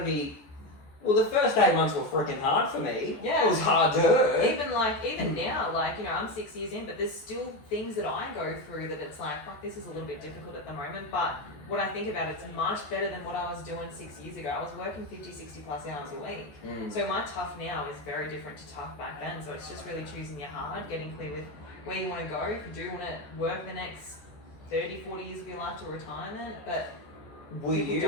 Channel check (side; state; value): right; late; 14 ms